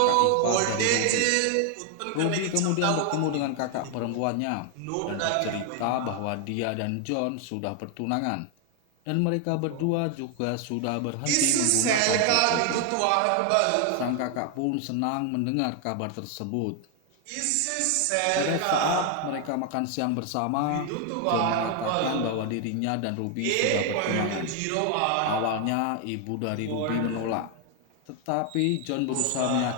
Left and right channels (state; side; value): different; both; correlation 0.00